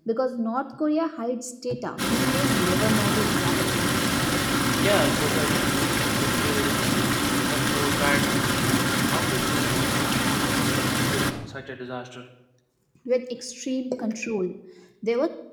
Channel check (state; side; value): identical; both; correlation 1.00